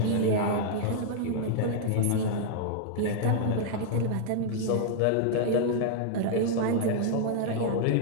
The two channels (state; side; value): different; both; correlation -0.01